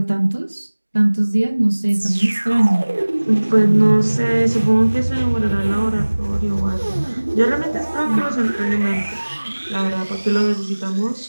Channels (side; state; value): both; inverted; correlation -1.00